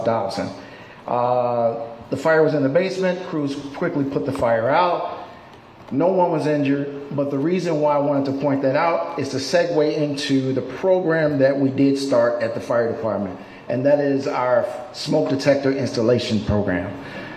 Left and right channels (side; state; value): both; identical; correlation 1.00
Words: Dolton. The fire was in the basement. Crews quickly put the fire out. No one was injured, but the reason why I wanted to point that out is to segue into the program that we did start at the fire department, and that is our smoke detector installation program.